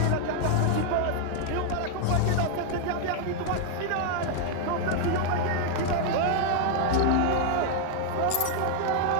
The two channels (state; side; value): different; both; correlation 0.00